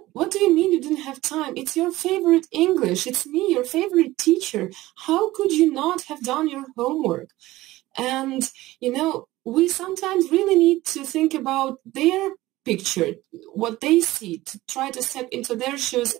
do you mean you didn't have time? It's your favorite English. It's me, your favorite teacher. How could you not have done your homework? And, we sometimes really need to think about their picture, what they see, to try to step into their shoes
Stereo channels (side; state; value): left; quieter; 17.4 dB